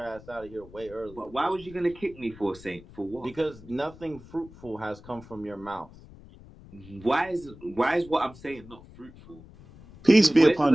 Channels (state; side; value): noise; left; rumble, 20 dB below the sound